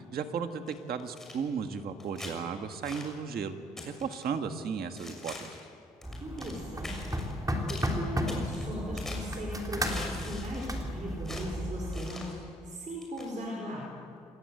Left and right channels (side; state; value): both; normal; correlation 0.64